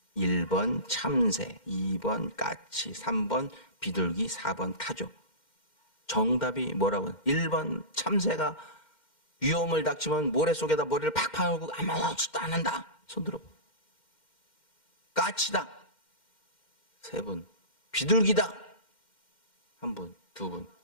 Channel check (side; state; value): right; late; 2.1 ms